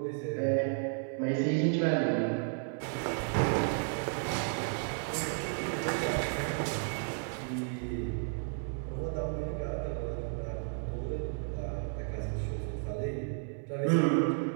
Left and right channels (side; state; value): left; silent; 56 dB below the other